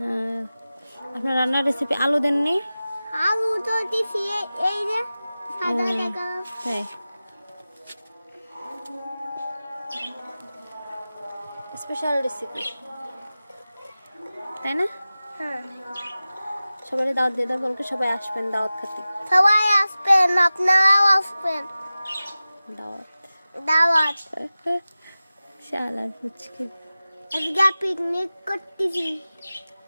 আপনার রান্নার রেসিপি আলু দেননি? আলু তো দিছি এই যে সাদা দেখা। তাই স্পেশাল রেসিপি, তাই না? হ্যাঁ, সবাই দাওয়াত দিয়ে দাও, বলকে সবাই আসবেন দাওয়াত খেতে। সবাই আসবেন, আপনারাও আসবেন। দাওয়াত দাওয়াত শালার ফুচকে। আজকে পিকনিক করতেছি।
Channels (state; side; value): inverted; both; correlation -0.96